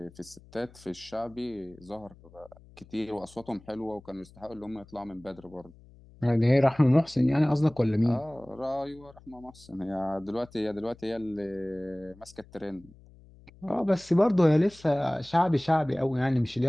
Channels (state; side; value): noise; left; hum, 24 dB below the sound